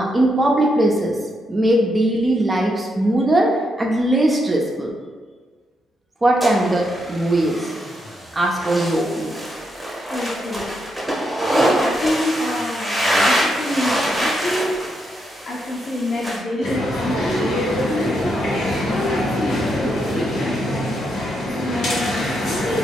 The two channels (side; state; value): both; normal; correlation 0.81